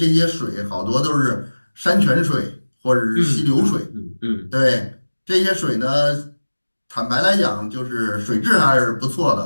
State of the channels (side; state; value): both; inverted; correlation -1.00